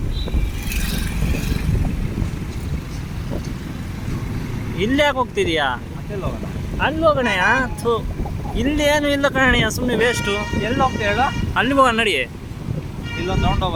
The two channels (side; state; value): both; identical; correlation 1.00